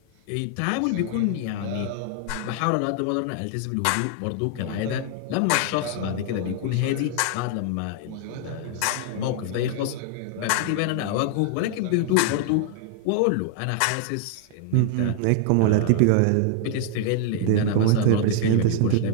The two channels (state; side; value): different; both; correlation 0.00